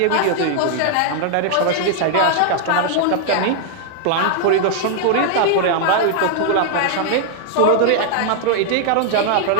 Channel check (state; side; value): different; both; correlation 0.00